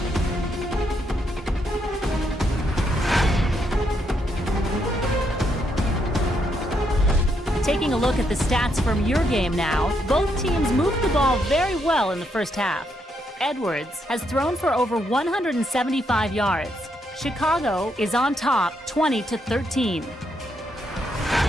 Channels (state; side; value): normal; both; correlation 0.77